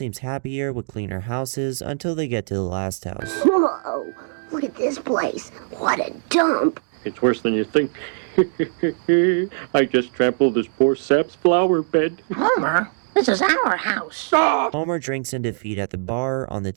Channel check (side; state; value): left; silent; digital silence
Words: happier with cleaner houses until they get to the last house. Whoa, look at this place. What a dump. It's worse than you think. I just trampled this poor sap's flower bed. Homer, this is our house. Homer drinks in defeat at the bar. On the